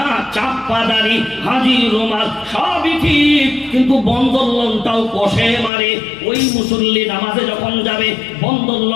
চাপ্পা দাড়ি, হাজি রুমাল, সবই ঠিক, কিন্তু বন্ধন লোনটাও কষে মারে। ওই মুসল্লি নামাজে যখন যাবে, বন্ধন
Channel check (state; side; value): drops out; right; at 5.7 s